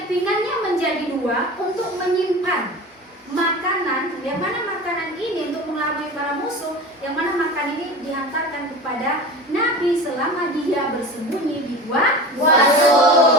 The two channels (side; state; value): both; normal; correlation 0.32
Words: pinggangnya menjadi 2 untuk menyimpan makanan, yang mana makanan ini untuk mengelabui para musuh, yang mana makanan ini dihantarkan kepada Nabi selama dia bersembunyi di Gua